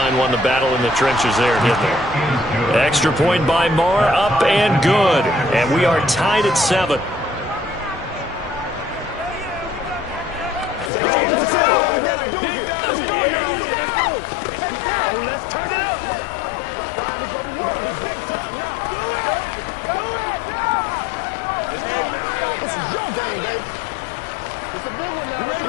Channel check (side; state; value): right; drops out; at 10.9 s